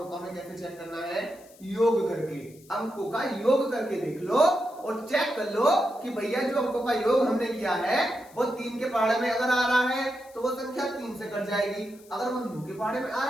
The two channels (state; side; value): noise; left; hiss, 25 dB below the sound